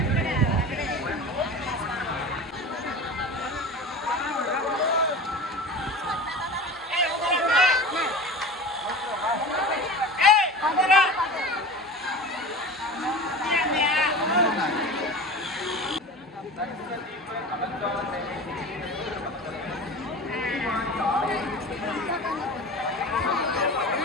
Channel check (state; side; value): normal; both; correlation 0.33